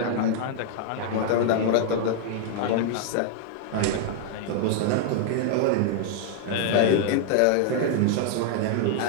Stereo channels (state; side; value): different; both; correlation 0.00